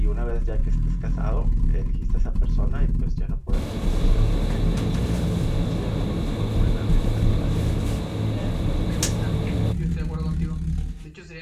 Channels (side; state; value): both; identical; correlation 1.00